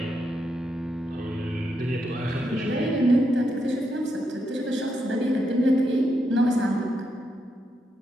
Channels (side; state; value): both; normal; correlation 0.82